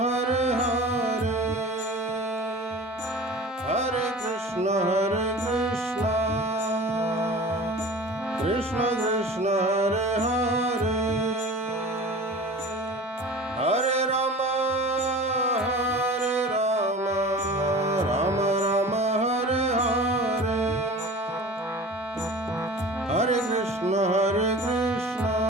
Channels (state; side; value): normal; both; correlation 0.39